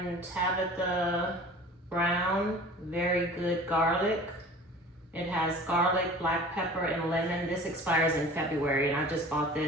Tabitha Brown, very good garlic. It has garlic, black pepper, and lemon. This expires in February, and I just bought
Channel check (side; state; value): both; normal; correlation 0.43